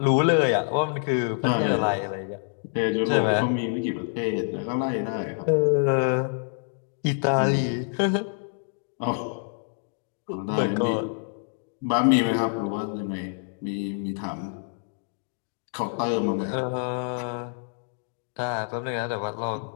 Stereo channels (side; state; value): right; silent; digital silence